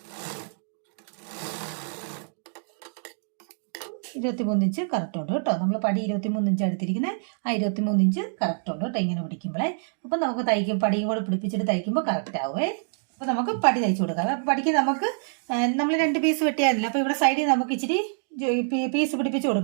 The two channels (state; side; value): silent; left; digital silence